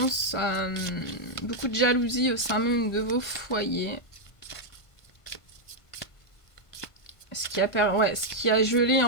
Beaucoup de jalousie au sein même de vos foyers. Ce qui a gelé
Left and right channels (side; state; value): right; late; 1.5 ms